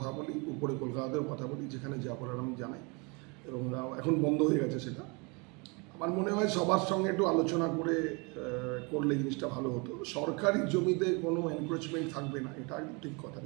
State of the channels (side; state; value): left; quieter; 30.5 dB